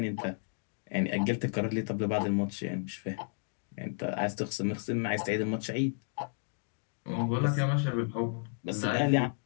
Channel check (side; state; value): right; silent; 56 dB below the other